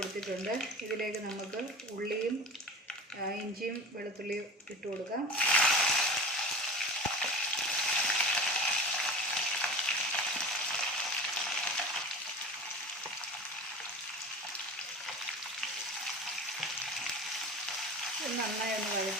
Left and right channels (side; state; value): both; normal; correlation 0.35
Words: ഇതിലേക്ക് നമുക്ക് ഉള്ളിയും ഇഞ്ചിയും വെളുത്തുള്ളിയും ഇട്ട് കൊടുക്കാം. നന്നായി ഒന്ന്